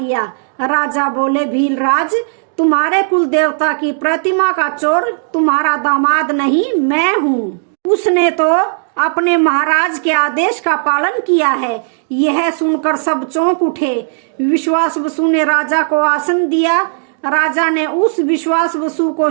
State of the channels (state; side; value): silent; left; digital silence